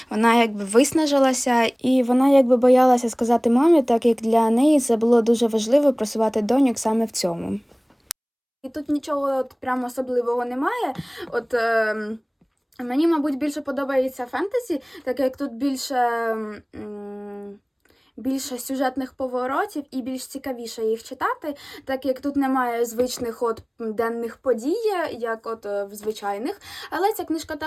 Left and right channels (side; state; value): both; identical; correlation 1.00